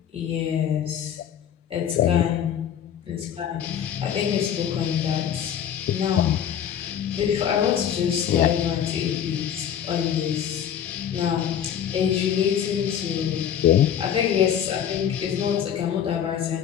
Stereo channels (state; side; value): quieter; right; 9.2 dB